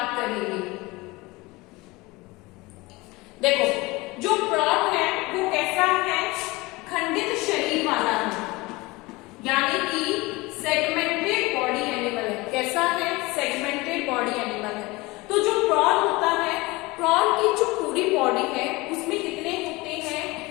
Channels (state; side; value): quieter; right; 22.6 dB